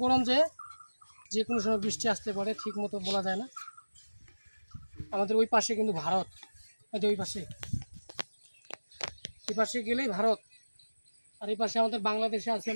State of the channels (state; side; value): inverted; both; correlation -1.00